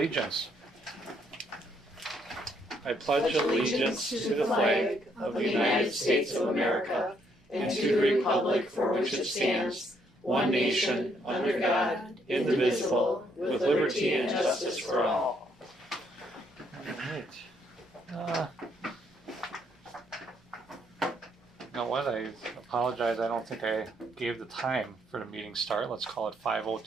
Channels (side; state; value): both; normal; correlation 0.71